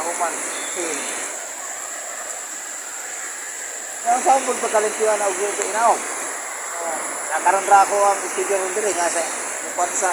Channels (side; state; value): left; noise; hiss, 23 dB below the sound